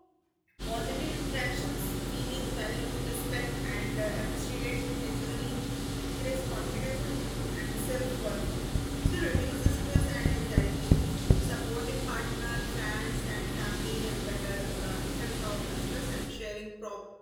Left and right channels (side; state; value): both; identical; correlation 1.00